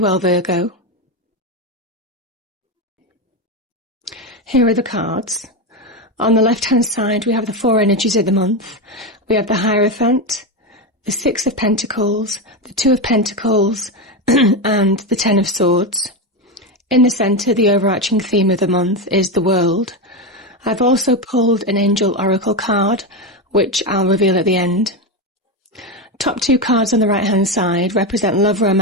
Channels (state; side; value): normal; both; correlation 0.13